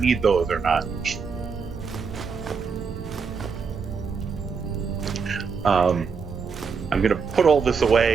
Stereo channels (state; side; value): quieter; left; 5.5 dB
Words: those or not. I'm gonna put all this